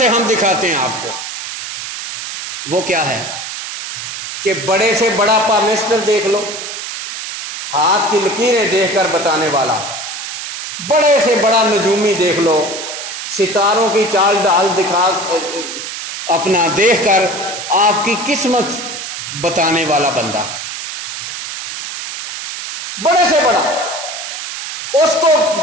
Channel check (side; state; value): right; noise; hiss, 7 dB below the sound